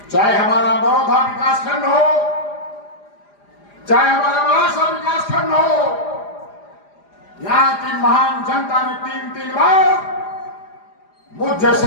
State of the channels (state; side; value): late; right; 4.9 ms